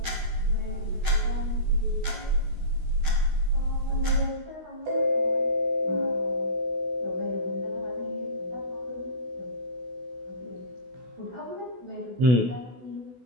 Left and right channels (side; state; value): left; late; 16 ms